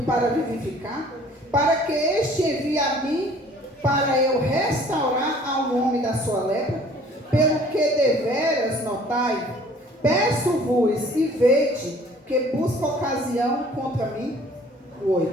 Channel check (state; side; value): normal; both; correlation 0.53